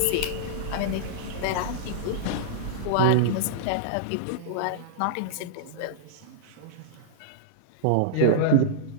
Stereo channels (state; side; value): different; both; correlation -0.02